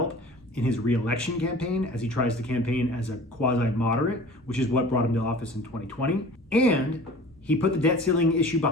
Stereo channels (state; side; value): normal; both; correlation 0.43